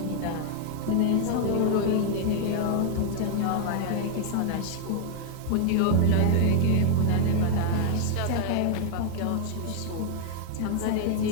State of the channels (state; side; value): different; both; correlation 0.00